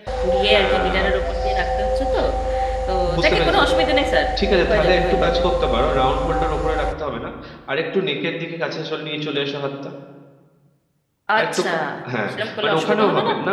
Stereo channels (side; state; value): both; identical; correlation 1.00